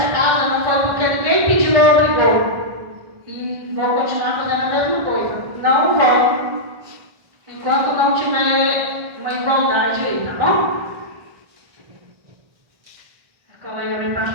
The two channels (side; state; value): left; late; 1.6 ms